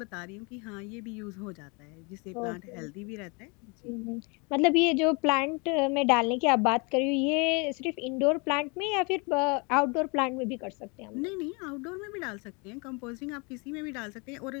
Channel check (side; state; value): right; quieter; 30.9 dB